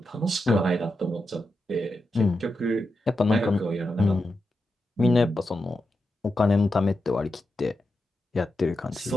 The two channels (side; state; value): both; normal; correlation 0.88